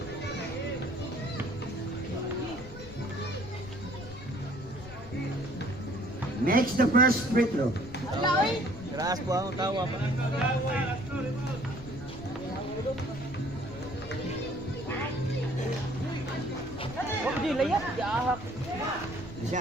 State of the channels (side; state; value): left; noise; rumble, 14 dB below the sound